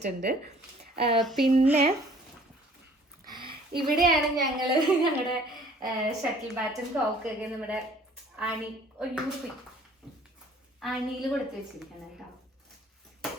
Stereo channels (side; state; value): both; normal; correlation 0.54